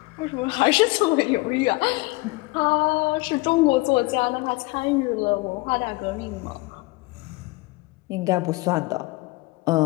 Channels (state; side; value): quieter; right; 23.6 dB